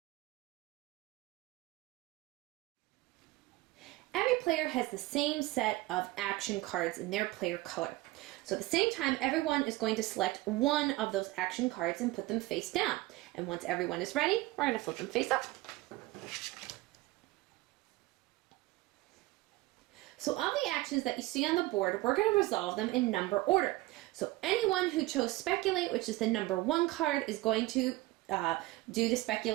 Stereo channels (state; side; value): quieter; left; 19.2 dB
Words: Every player has the same set of action cards in their player color. So at the same time, everyone is going to select one of those action cards and put them face down. And once everyone is ready, we're going to flip them face up. So of the actions that you see on the board, we're going to resolve them in number order. So anyone who chose Speculate, which is the number 1 card, is going to do the